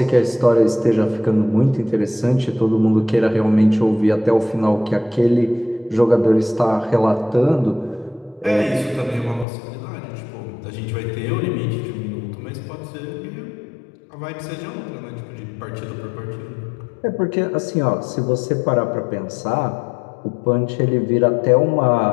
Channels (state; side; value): drops out; right; at 9.5 s